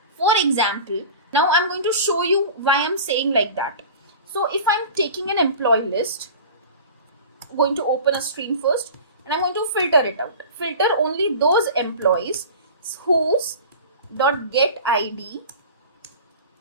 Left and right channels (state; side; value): inverted; both; correlation -0.37